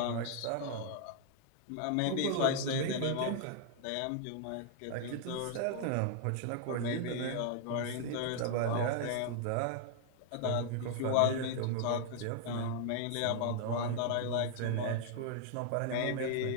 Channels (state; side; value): different; both; correlation 0.00